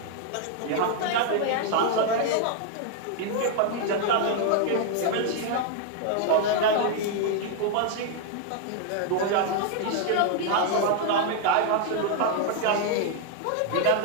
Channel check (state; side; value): different; both; correlation 0.00